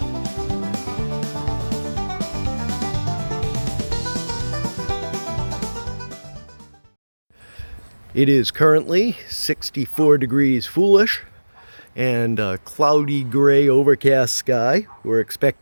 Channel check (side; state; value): both; inverted; correlation -1.00